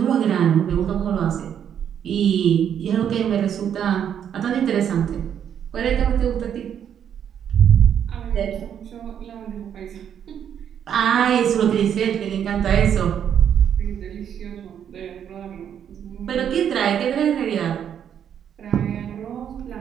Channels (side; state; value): left; quieter; 8.9 dB